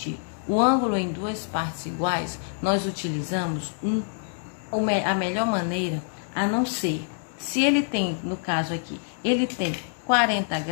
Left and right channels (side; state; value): right; silent; digital silence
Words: o ângulo em duas partes iguais, nós utilizamos a melhor maneira, a não ser, se ele tem, no caso aqui, ele tem 40